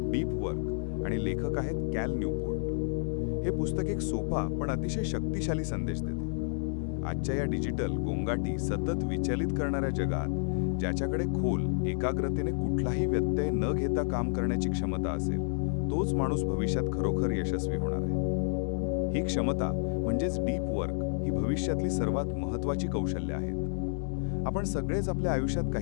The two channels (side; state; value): right; silent; digital silence